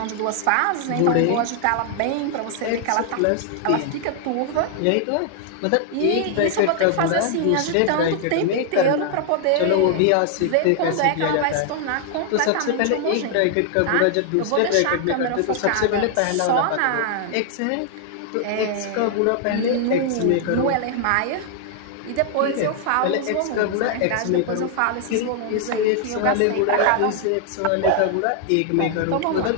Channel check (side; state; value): both; different; correlation 0.00